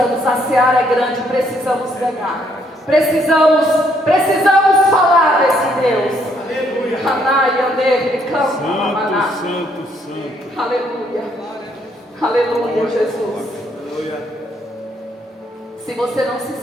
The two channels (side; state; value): both; normal; correlation 0.70